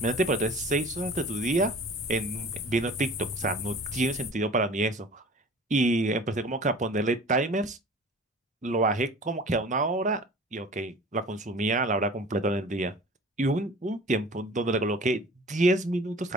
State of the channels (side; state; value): both; normal; correlation 0.44